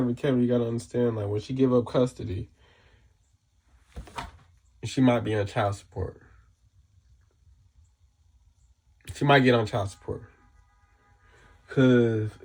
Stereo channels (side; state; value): both; identical; correlation 1.00